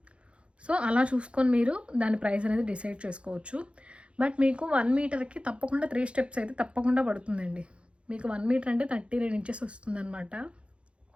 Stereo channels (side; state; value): left; late; 0.059 ms